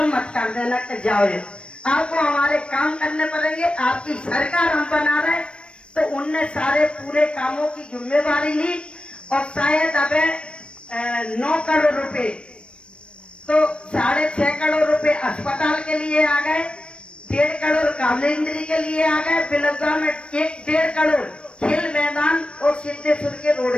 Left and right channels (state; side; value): late; right; 0.057 ms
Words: मत कर देना कि जाओ, आपको हमारे काम करने पड़ेंगे, आपकी सरकार हम बना रहे। तो उनने सारे पूरे कामों की जिम्मेवारी ली और शायद अब 9 करोड़ रुपए, तो 6.5 करोड़ रुपए अस्पताल के लिए आ गए, 1.5 करोड़ कालेंद्री के लिए आ गए, बिलौदा में 1.5 करोड़ खेल मैदान और सिद्धेश्वर के रोड